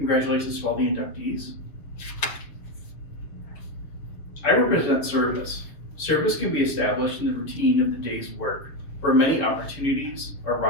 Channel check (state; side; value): late; right; 6.9 ms